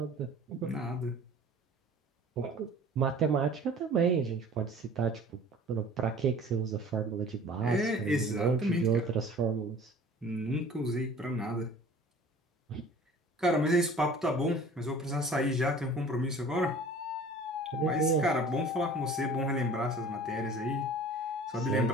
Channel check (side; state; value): both; normal; correlation 0.46